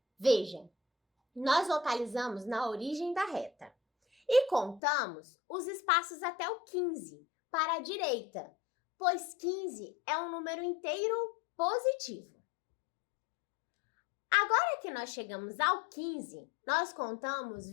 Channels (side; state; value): right; drops out; at 4.8 s